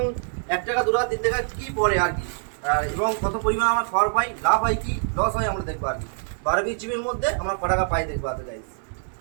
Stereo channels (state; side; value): silent; left; digital silence